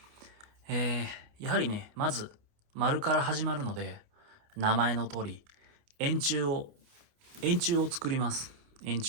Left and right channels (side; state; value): left; late; 29 ms